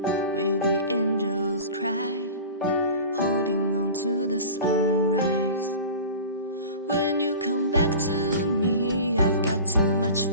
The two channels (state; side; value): inverted; both; correlation -0.37